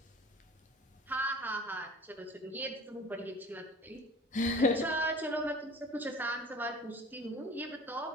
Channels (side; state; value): both; normal; correlation 0.43